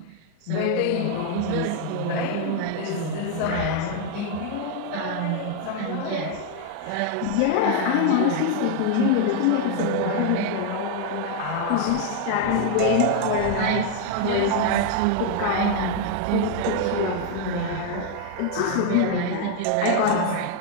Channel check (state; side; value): different; both; correlation 0.00